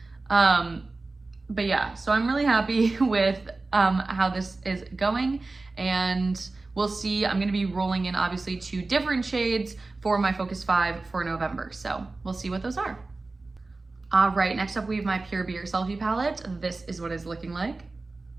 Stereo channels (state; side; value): quieter; left; 3.4 dB